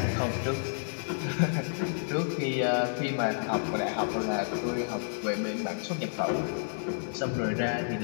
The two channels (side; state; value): right; silent; digital silence